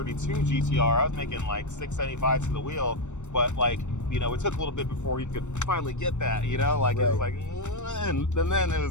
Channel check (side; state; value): right; late; 0.84 ms